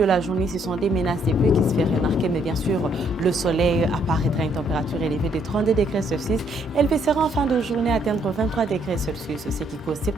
la journée, ce sont des menaces des pluies qui se font remarquer, mais bien sûr, le soleil apparaîtra à une température élevée de 32 degrés Celsius. Elle baissera en fin de journée à atteindre 23 degrés Celsius, ce qui cause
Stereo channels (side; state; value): both; normal; correlation 0.69